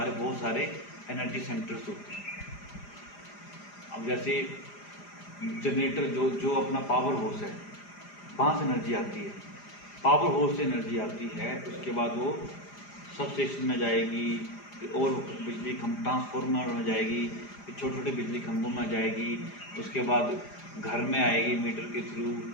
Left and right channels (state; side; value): late; right; 4.9 ms